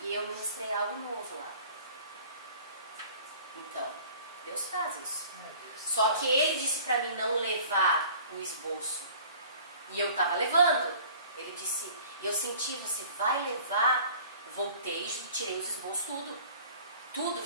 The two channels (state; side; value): inverted; both; correlation -0.48